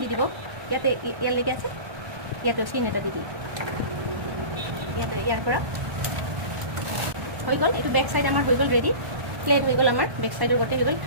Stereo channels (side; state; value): left; late; 1.1 ms